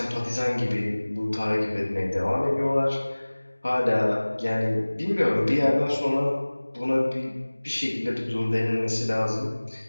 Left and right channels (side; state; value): both; inverted; correlation -1.00